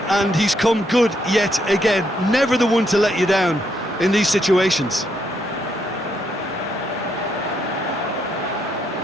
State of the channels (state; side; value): normal; both; correlation 0.76